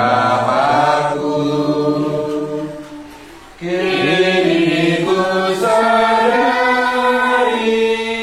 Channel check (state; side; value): identical; both; correlation 1.00